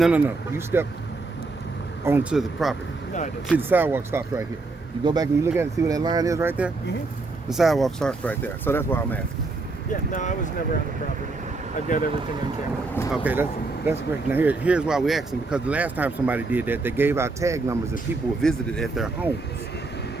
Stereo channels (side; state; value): left; quieter; 3.5 dB